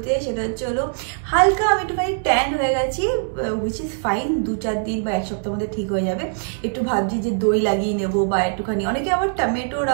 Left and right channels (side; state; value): left; silent; digital silence